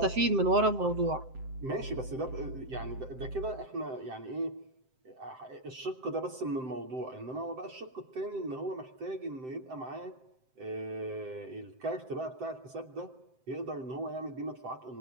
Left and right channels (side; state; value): left; late; 7.7 ms